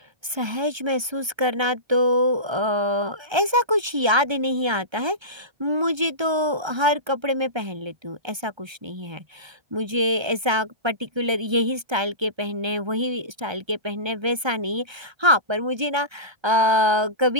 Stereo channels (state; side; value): late; left; 1.3 ms